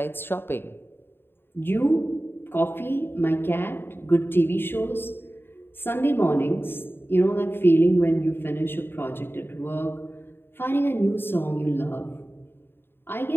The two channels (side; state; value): right; late; 0.11 ms